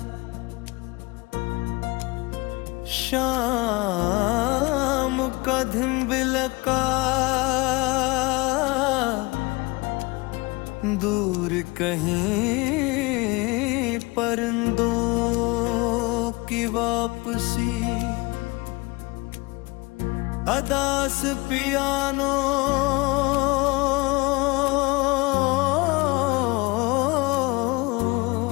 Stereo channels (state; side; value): quieter; right; 24.8 dB